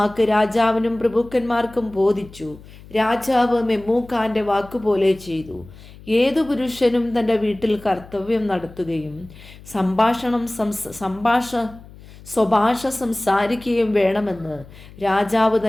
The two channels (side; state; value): left; noise; hum, 20 dB below the sound